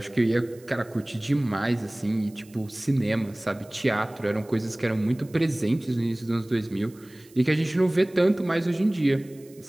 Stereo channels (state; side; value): noise; right; hiss, 26 dB below the sound